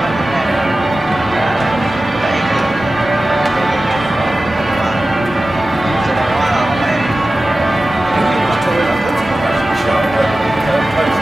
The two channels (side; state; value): both; normal; correlation 0.95